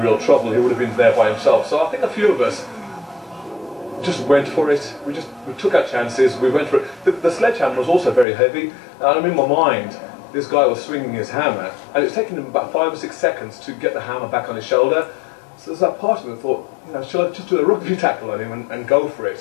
real trouble. He would have been there by himself. So I think a few of us just went for it. We took our chances. We went for it. The sledgehammer was also very heavy. And in my mind, this guy was swinging his hammer, and it was taking him about 5 or 6 seconds to get the hammer back on his shoulder. So there's that part of me that thought, you know, shall I just do a rugby tackle on him and go for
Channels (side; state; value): right; drops out; at 8.2 s